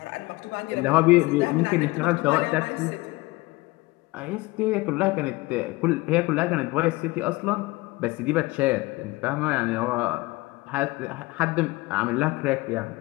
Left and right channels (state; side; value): quieter; right; 21.8 dB